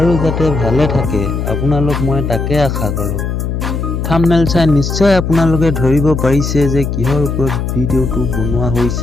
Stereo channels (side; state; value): left; noise; hum, 3 dB below the sound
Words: যাতে ভালে থাকে আপোনালোক মই তাকে আশা কৰোঁ। থাম্বনেল চাই নিশ্চয় আপোনালোকে ধৰিব পাৰিছে যে কিহৰ ওপৰত ভিডিঅ'টো বনোৱা